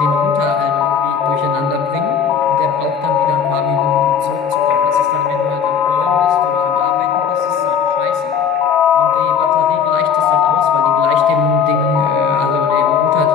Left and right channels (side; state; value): right; quieter; 7.2 dB